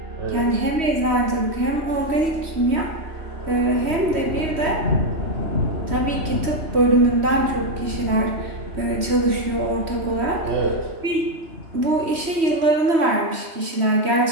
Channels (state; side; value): late; left; 3.1 ms